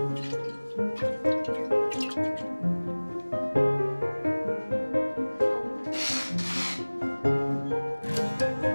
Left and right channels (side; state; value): both; inverted; correlation -1.00